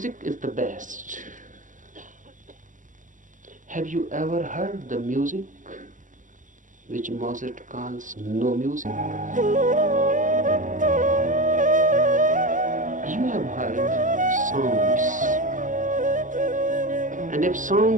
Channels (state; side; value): late; left; 0.37 ms